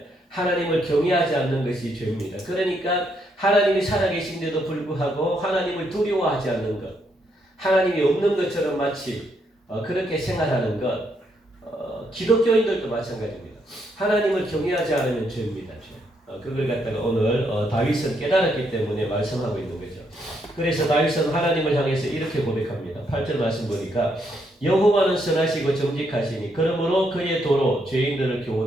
하나님을 경외하지 않는 것이 죄입니다. 그러니까 하나님이 살아계신데도 불구하고 하나님을 두려워하지 않는 것, 하나님이 없는 것처럼 마치 그렇게 생활하는 것, 기독교인들도 마찬가지입니다. 하나님을 경외하지 않으면 죄입니다. 죄. 그걸 갖다가 오늘 다윗은 깨달았기 때문에 말씀하고 있는 거죠. 그래서 다윗은 하나님을 향해서 이렇게 고백합니다. 8절 말씀 보니까 여호와는 선하시고 정직하시니 그러므로 그의 도로 죄인들을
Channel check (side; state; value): both; normal; correlation 0.76